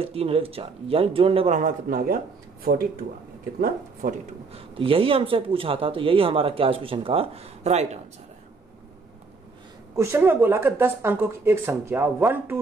3 और 1 4, यानी जोड़ने पर हमारा कितना आ गया? 42 आ गया। कितना? 42। तो यही हमसे पूछा था, तो यही हमारा क्या इस क्वेश्चन का राइट आंसर है। क्वेश्चन में बोला कि 10 अंकों की एक संख्या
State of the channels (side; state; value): left; quieter; 4.2 dB